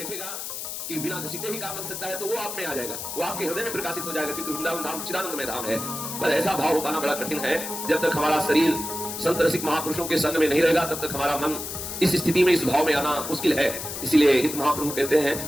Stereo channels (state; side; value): noise; left; hiss, 6 dB below the sound